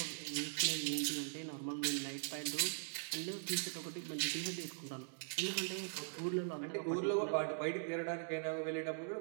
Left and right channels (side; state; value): left; silent; digital silence